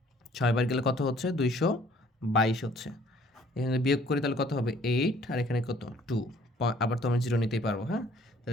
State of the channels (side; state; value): both; normal; correlation 0.58